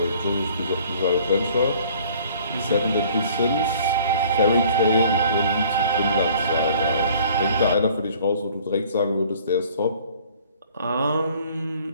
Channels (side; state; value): both; inverted; correlation -0.54